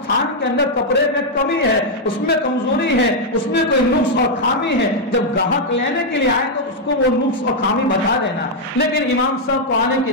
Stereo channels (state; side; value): normal; both; correlation -0.02